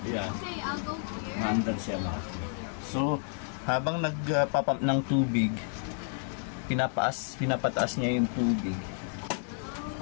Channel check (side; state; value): right; silent; 56 dB below the other